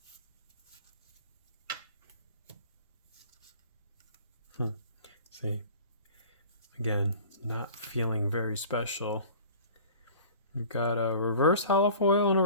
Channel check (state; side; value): inverted; both; correlation -0.44